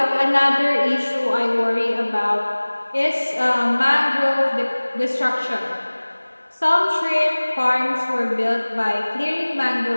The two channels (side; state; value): both; inverted; correlation -1.00